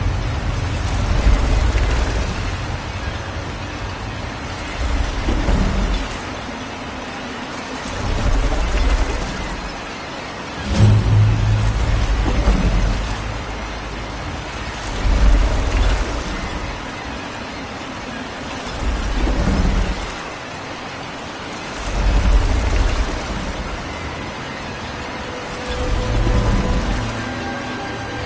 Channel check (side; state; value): both; identical; correlation 1.00